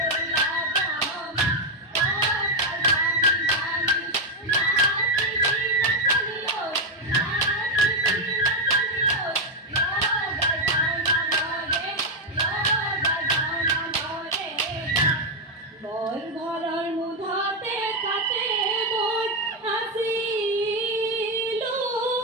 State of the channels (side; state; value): both; normal; correlation 0.04